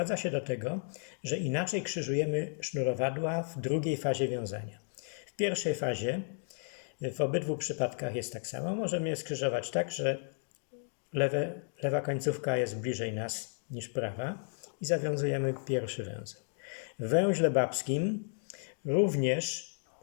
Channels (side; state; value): right; silent; 55 dB below the other